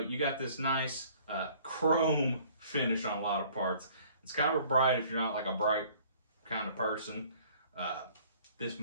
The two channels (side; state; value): both; inverted; correlation -0.55